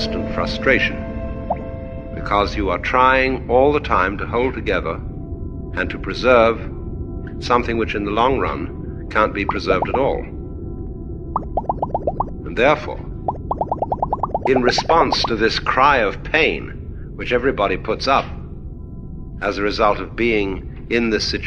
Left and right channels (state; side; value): identical; both; correlation 1.00